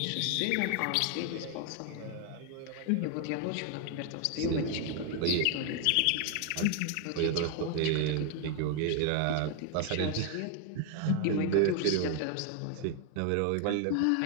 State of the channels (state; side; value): different; both; correlation 0.00